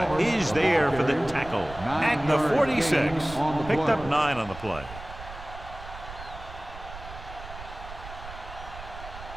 is there for the tackle at the 46. Picked up 9 on the play.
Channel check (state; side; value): noise; right; rumble, 13 dB below the sound